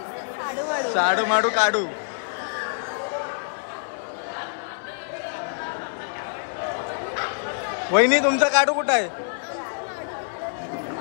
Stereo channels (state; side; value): silent; right; 61 dB below the other